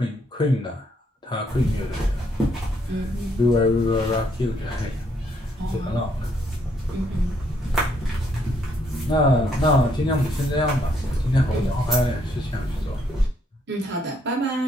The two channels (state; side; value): normal; both; correlation 0.72